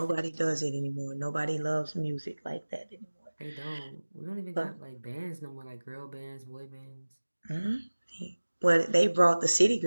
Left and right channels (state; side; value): inverted; both; correlation -1.00